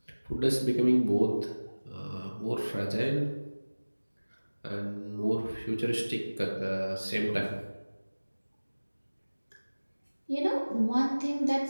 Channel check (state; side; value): inverted; both; correlation -1.00